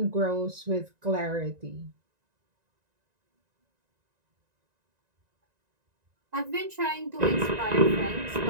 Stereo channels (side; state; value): left; late; 1.9 ms